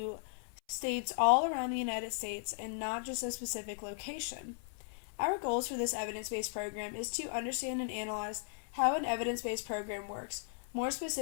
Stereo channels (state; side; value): silent; right; 53 dB below the other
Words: states all around the United States and not just a specific location. Our goals for this evidence-based program is to understand and analyze how an evidence-based program works, more